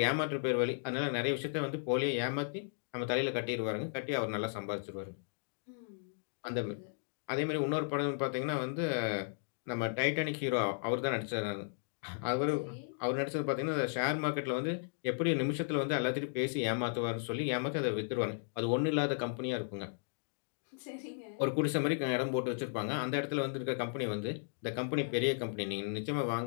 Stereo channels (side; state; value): right; silent; digital silence